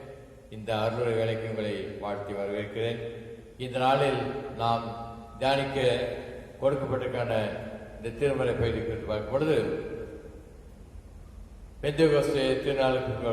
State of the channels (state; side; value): identical; both; correlation 1.00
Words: இந்த அருளுரை வேலைக்கு உங்களை வாழ்த்தி வரவேற்கிறேன். இந்த நாளில் நாம் தியானிக்க கொடுக்கப்பட்டிருக்கான இந்த திருமறை பகுதி குறித்து பார்க்கும் பொழுது, பெந்தேகோஸ்தே திருநாளுக்கு